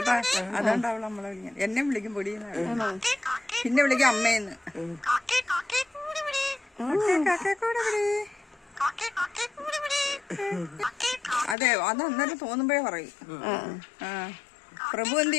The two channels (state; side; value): drops out; right; at 11.6 s